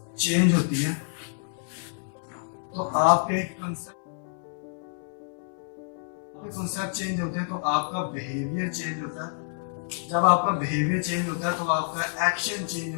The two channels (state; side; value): silent; right; digital silence